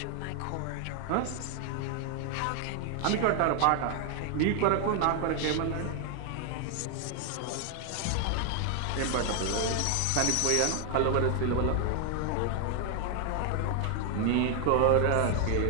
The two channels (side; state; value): both; different; correlation 0.00